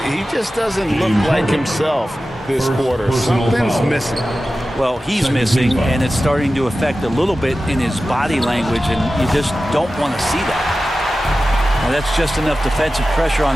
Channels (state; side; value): normal; both; correlation 0.94